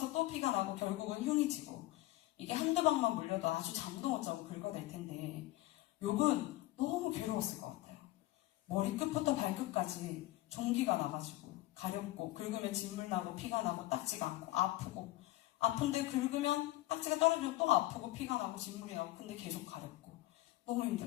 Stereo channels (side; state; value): right; quieter; 17.7 dB